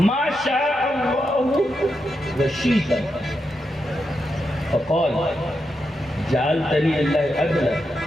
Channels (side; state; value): both; normal; correlation 0.85